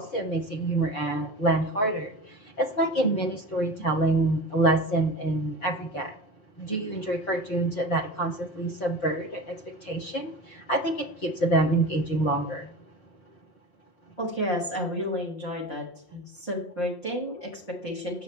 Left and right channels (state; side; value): late; right; 5.6 ms